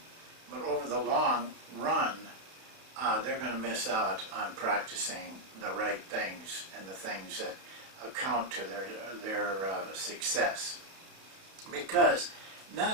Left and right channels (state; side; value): late; left; 31 ms